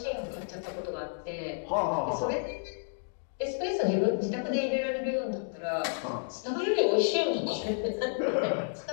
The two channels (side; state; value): right; silent; digital silence